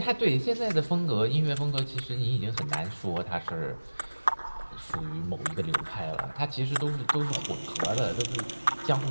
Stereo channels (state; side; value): inverted; both; correlation -1.00